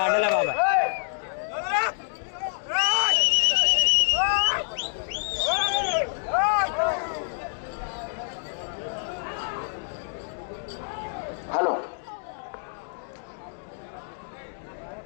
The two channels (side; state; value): right; silent; digital silence